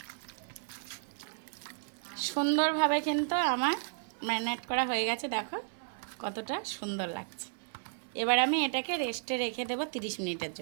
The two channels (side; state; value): left; silent; 56 dB below the other